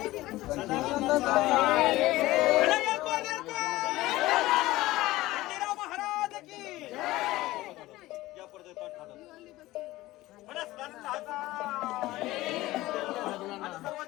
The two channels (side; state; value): right; quieter; 17.8 dB